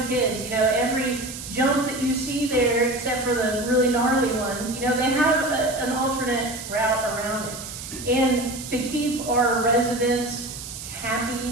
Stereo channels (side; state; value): right; noise; hiss, 10 dB below the sound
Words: kids. Every jump that you see there, except for the really gnarly ones, they have an alternate route around it. And to keep our residents